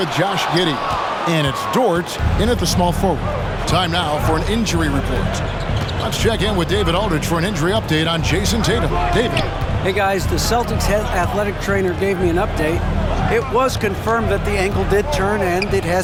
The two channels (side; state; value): both; identical; correlation 1.00